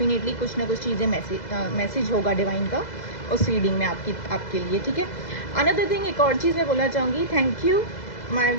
कुछ ना कुछ चीज़ें मैसेज होगा डिवाइन का उस रीडिंग में आपके लिए। ठीक है, अनदर थिंग, एक और चीज़ मैं बोलना चाहूँगी, thank you my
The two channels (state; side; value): late; right; 2.0 ms